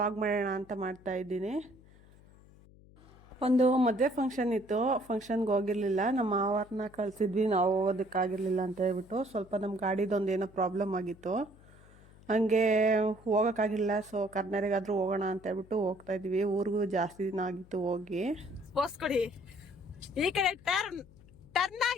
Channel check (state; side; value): noise; left; hum, 24 dB below the sound